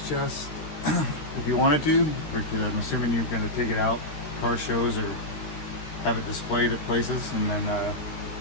chest if you wanted to, or I'm assuming you're going to take it out car shows or have it displayed at places, and then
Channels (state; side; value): late; right; 13 ms